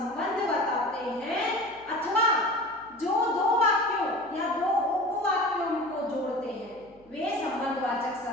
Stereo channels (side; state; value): right; noise; hum, 28 dB below the sound